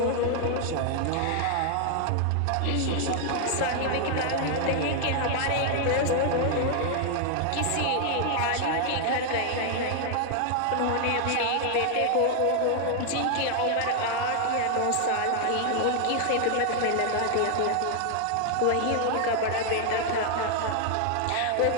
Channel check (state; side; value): different; both; correlation 0.00